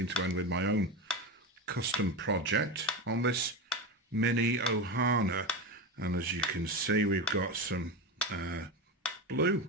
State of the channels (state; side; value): normal; both; correlation 0.20